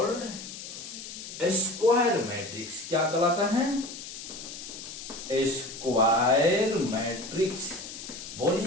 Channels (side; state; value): left; noise; hiss, 11 dB below the sound